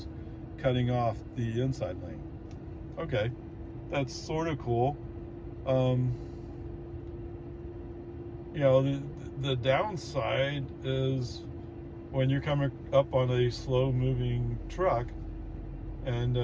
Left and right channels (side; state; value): both; identical; correlation 1.00